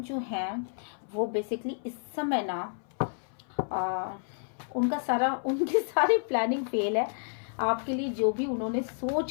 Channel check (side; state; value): right; silent; 58 dB below the other